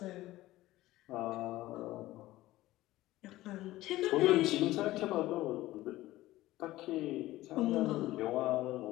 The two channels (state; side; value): quieter; right; 16.7 dB